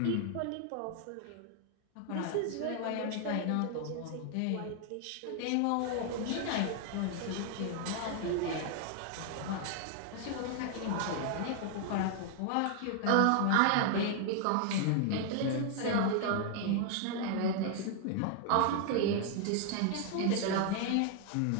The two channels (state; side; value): different; both; correlation 0.00